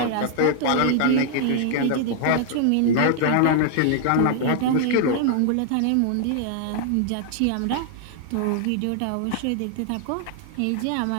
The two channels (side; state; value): both; different; correlation -0.01